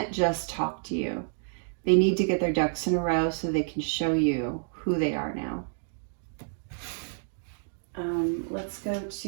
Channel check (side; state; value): left; silent; digital silence